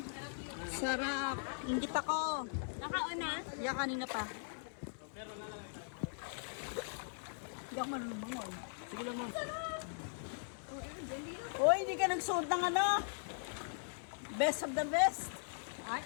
Sarap. Ingit ako. Nakauna. Yeah, kanina pa. Hindi ako marunong bangon. Sige lang, ma'am. Uy, hindi ka nagsuot ng ano? Best of the best. Ay,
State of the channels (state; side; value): silent; right; digital silence